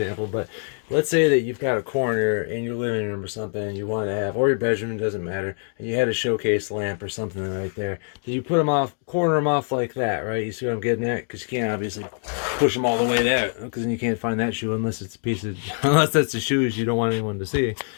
but let's say that you've got a corner in your living room or something and you want to have, or your bedroom, doesn't matter, and you had a showcase lamp or something right there. Then you put them off, corner them off like that, right? You see what I'm getting at? Because you can't obviously push them all the way there, because then you can't find that shoe unless it's a piece of, unless that's the shoes you don't want anyone to see.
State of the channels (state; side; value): silent; right; 57 dB below the other